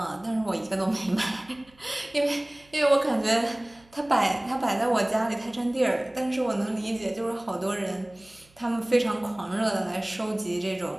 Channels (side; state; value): right; noise; hum, 29 dB below the sound